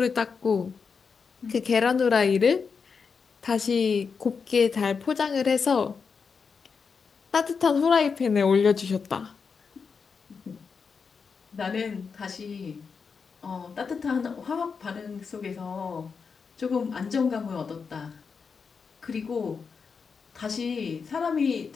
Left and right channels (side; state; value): right; quieter; 5.6 dB